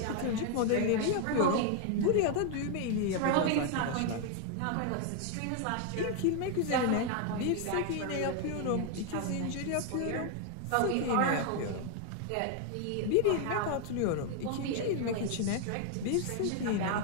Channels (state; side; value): different; both; correlation 0.00